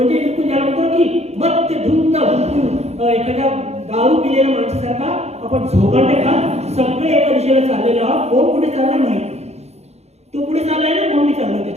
बिलकुल ज्याला म्हणतो की मत धुंद बिलकुल एखाद्या दारू पिलेल्या माणसासारखा आपण झोकांडे खात सगळे एका दिशेला चाललेले आहोत. कोण कुठे चालला नाही, तो पुढे चाललाय ना म्हणून मी चाललोय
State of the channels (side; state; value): left; late; 0.31 ms